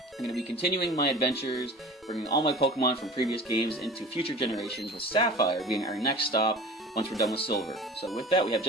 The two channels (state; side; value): normal; both; correlation 0.39